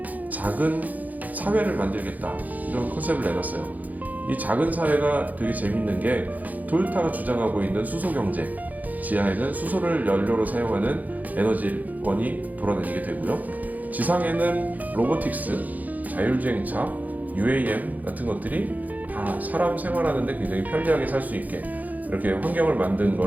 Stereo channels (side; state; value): left; late; 0.080 ms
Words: 작은 사회를 만들겠다 이런 컨셉을 내놨어요. 이 작은 사회가 되게 재밌는 게 토요타가 주장하고 있는 수소 경제, 지하에는 수소를 연료로 사용하는 에너지원이 돌아다니게 되고요. 지상에는 로보틱스, 자율주행차, UAM 같은 것들이 다 사람 생활하는데 굉장히 편리하게 살 수 있게 이렇게 환경을 만든